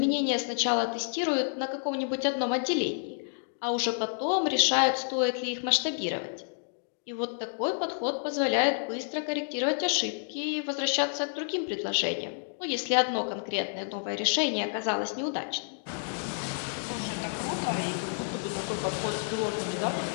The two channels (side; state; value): right; silent; digital silence